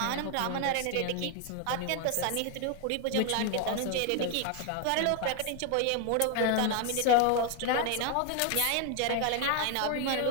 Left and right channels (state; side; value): different; both; correlation 0.01